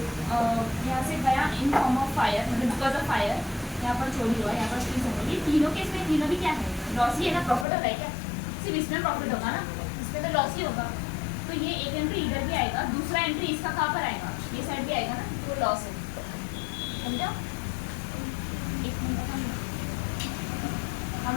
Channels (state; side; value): drops out; right; at 7.7 s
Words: यहाँ से गया इन फॉर्म ऑफ फायर, मतलब बिकॉज ऑफ फायर, यहाँ पर चोरी हुआ, यहाँ पर चीज हो गई, तीनों के इसमें तीनों भी क्या है, लॉस ही है ना, प्रॉफिट हो रहा है क्या, सिर्फ इसमें प्रॉफिट होगा ना, इसमें तो लॉस ही होगा। तो ये एक एंट्री इधर भी आएगा, दूसरा एंट्री इसका कहाँ पर आएगा, ये साइड भी आएगा ना, तो लॉस है, समझा। एक मिनट हम